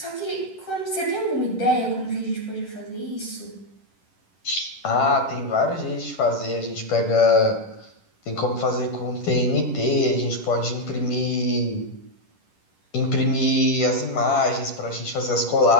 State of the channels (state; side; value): late; right; 10 ms